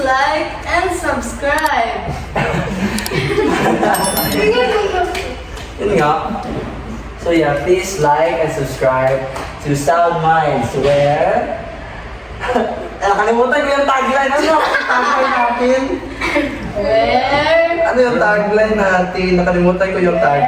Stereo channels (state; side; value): identical; both; correlation 1.00